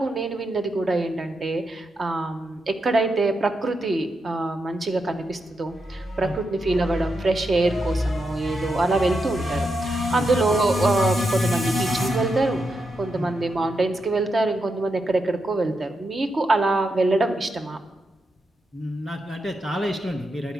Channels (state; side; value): normal; both; correlation 0.85